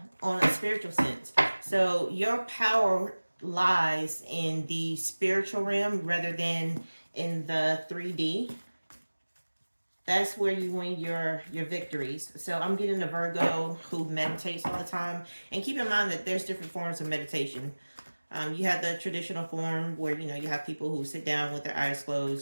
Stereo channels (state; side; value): inverted; both; correlation -1.00